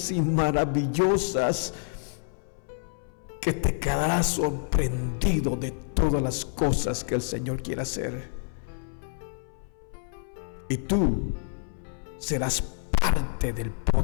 y maravillosas que te quedarás sorprendido de todas las cosas que el Señor quiere hacer. Y tú serás parte del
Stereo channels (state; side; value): silent; right; 59 dB below the other